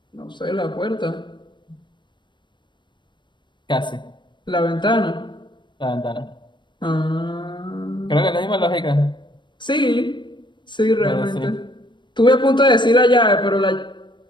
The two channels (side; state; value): right; late; 0.22 ms